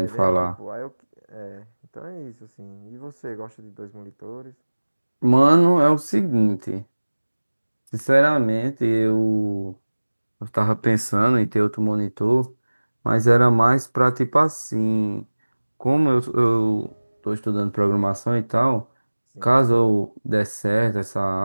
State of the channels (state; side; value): inverted; both; correlation -1.00